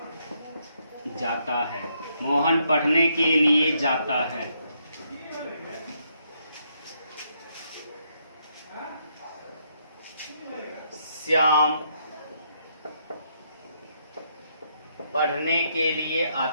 जाता है। मोहन पढ़ने के लिए जाता है। श्याम पढ़ने के लिए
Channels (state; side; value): inverted; both; correlation -0.75